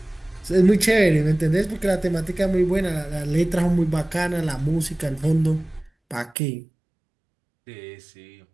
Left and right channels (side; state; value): left; drops out; at 6.4 s